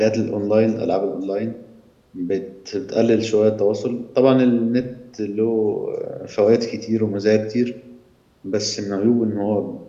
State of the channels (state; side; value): identical; both; correlation 1.00